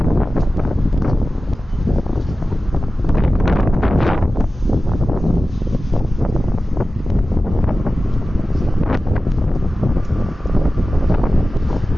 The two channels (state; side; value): normal; both; correlation 0.95